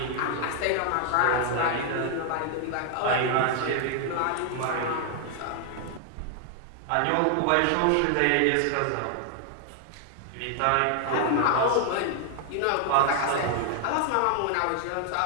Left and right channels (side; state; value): both; different; correlation 0.00